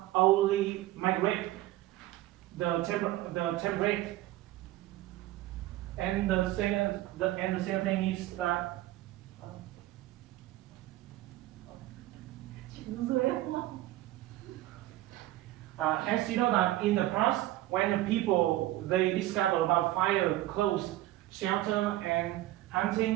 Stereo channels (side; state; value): left; quieter; 15.8 dB